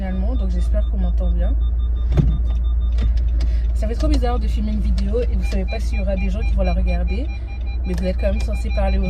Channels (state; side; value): identical; both; correlation 1.00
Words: Donc j'espère qu'on m'entend bien. Ça fait trop bizarre de filmer une vidéo et vous savez pas s'il y aura des gens qui vont la regarder. Mais vous êtes quand même censé parler